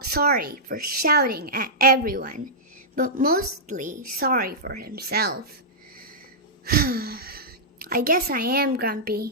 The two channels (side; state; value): both; normal; correlation -0.13